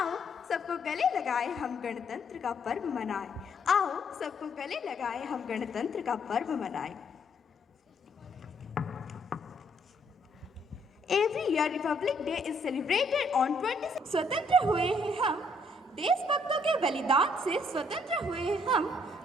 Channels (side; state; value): both; normal; correlation 0.68